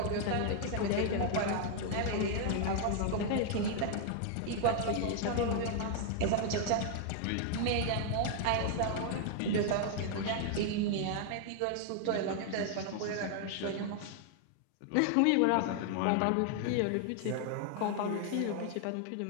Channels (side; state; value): both; different; correlation 0.00